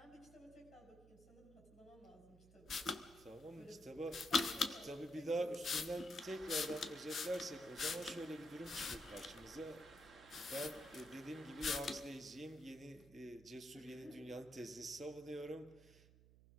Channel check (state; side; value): noise; right; hum, 22 dB below the sound